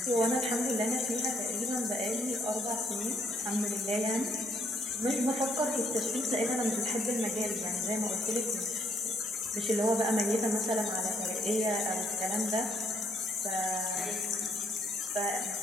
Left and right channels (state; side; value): normal; both; correlation 0.69